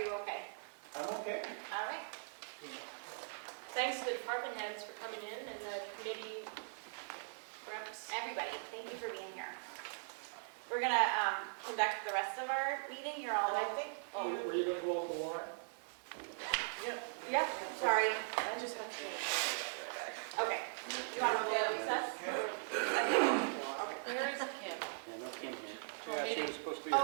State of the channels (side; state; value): left; silent; 51 dB below the other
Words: you okay? I'm okay. All right. Thanks to the department heads for coming in and the committee reps. Everybody, thank you for being here. We're going to conduct the rest of our meeting. You're all leaving. Oh, were you gonna go over the warrant? Yeah, sorry. I just have to finish. Okay. You want to go to recess? Where is Kim? Yeah, no Kim here. Yeah, she was supposed to be.